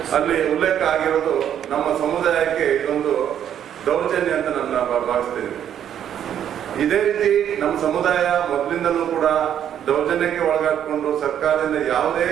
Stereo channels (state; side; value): quieter; left; 9.8 dB